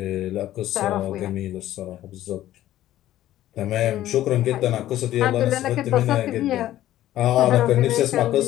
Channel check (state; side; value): quieter; right; 13.7 dB